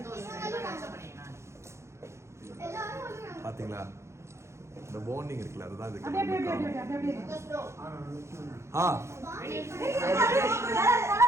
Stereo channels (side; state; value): left; late; 0.13 ms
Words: பாத்தீங்களா, இந்த பாண்டிங் இருக்குல்ல, அதுதான் இதுக்கு.